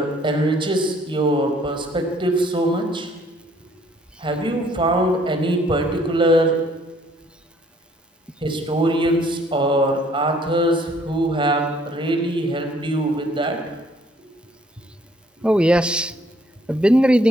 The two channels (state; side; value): normal; both; correlation 0.62